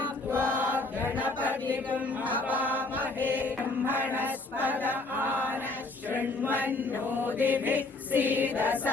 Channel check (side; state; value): right; quieter; 3.2 dB